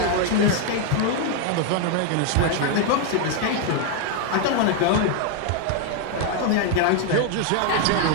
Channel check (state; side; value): different; both; correlation 0.01